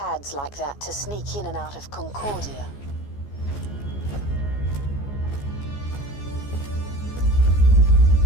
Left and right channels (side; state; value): right; late; 14 ms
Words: like that to sneak in and out of Concordia.